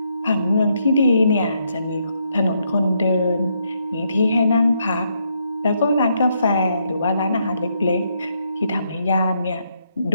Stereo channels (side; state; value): both; inverted; correlation -0.76